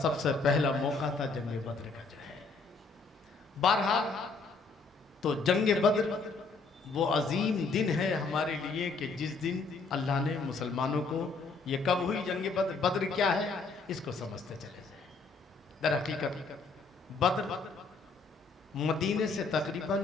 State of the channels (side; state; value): right; quieter; 4.2 dB